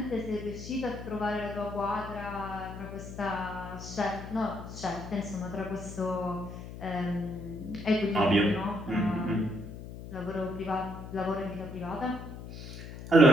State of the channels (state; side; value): noise; left; hum, 11 dB below the sound